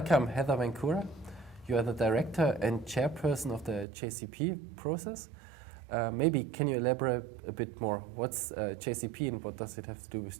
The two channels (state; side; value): drops out; left; at 3.9 s